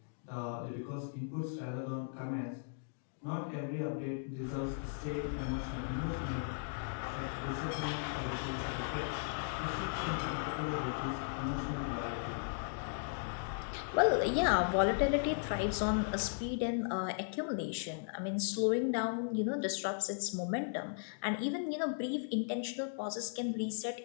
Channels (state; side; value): silent; right; digital silence